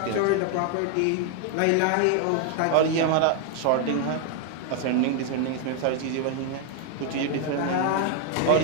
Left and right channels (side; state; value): both; different; correlation 0.00